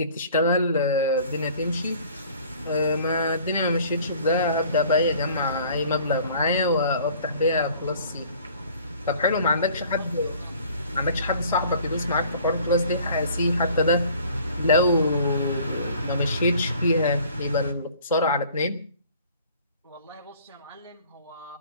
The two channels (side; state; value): both; inverted; correlation -0.52